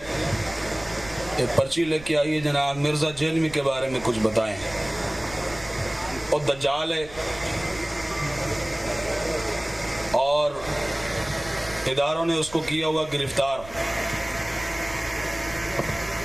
ایک پرچی لے کے آئیے جناب مرزا جیلمی کے بارے میں کچھ بتائیں۔ اور دجال ہے اور اداروں نے اس کو کیا ہوا گرفتار.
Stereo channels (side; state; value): right; noise; rumble, 18 dB below the sound